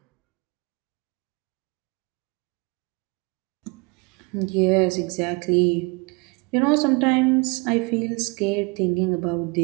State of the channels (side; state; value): left; quieter; 29.5 dB